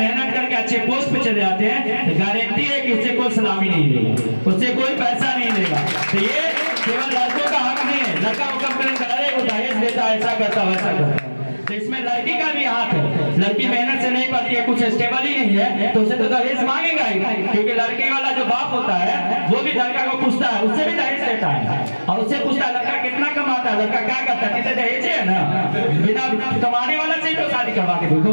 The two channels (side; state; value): both; inverted; correlation -1.00